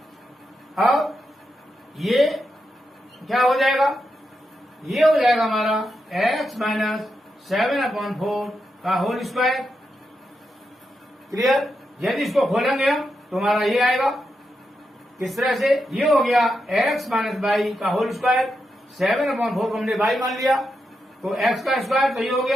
अब ये क्या हो जाएगा? ये हो जाएगा हमारा x माइनस 7/4 का होल स्क्वायर। क्लियर? यदि इसको खोलेंगे हम तो हमारा ये आएगा। किस तरह से? ये हो गया x माइनस बाई का होल स्क्वायर। 7/4 को हमने बाई मान लिया तो x का स्क्वायर तो ये हो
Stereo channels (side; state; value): both; normal; correlation 0.86